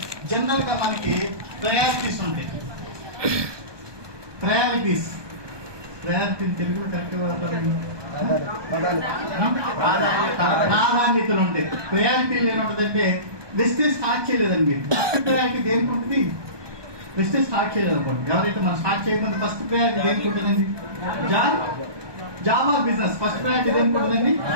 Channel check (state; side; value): late; left; 1.2 ms